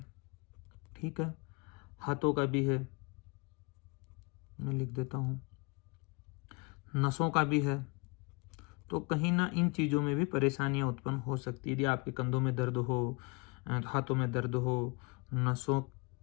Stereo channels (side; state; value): right; quieter; 29.1 dB